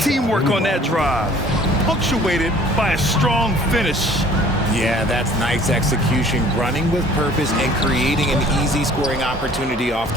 on that drive, punctuated by a strong finish. Yeah, that's nice execution, running with purpose and creating an easy scoring opportunity off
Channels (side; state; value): both; normal; correlation 0.52